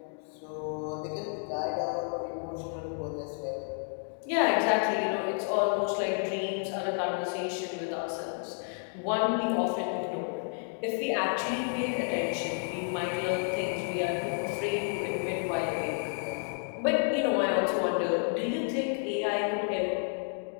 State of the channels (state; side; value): silent; right; 57 dB below the other